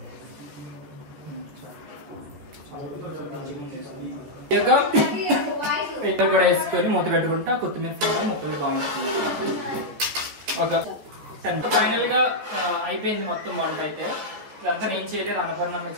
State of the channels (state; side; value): late; left; 14 ms